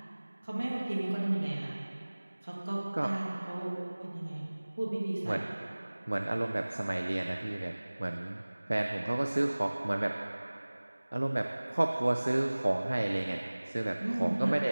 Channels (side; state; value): both; inverted; correlation -1.00